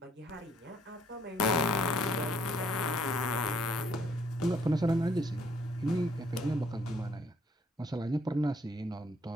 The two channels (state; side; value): normal; both; correlation 0.65